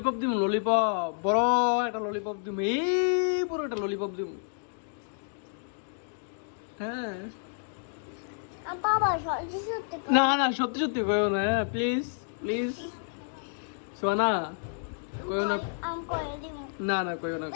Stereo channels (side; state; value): right; silent; digital silence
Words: দিব ললিপপ বড় একটা ললিপপ দিব এই বড় একটা ললিপপ দিব হ্যাঁ বাবা সত্যি সত্যি না না সত্যি সত্যি কইও না প্লিজ প্লিজ সোনা কইও না আমি করে দিব না না কইও না